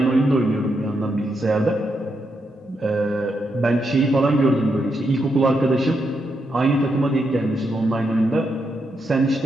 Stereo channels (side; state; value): both; normal; correlation 0.82